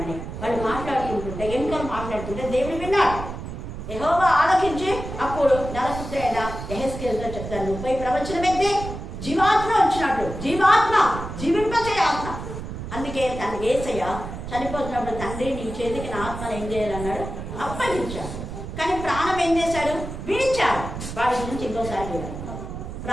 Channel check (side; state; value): right; noise; rumble, 8 dB below the sound